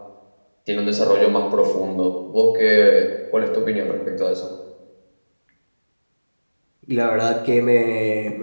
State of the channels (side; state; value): both; inverted; correlation -1.00